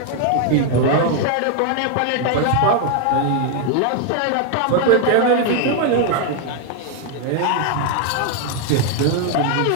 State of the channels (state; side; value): different; both; correlation 0.00